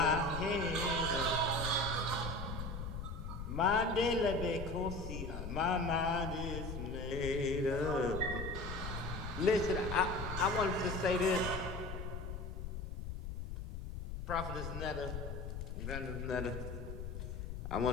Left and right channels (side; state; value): left; noise; rumble, 6 dB below the sound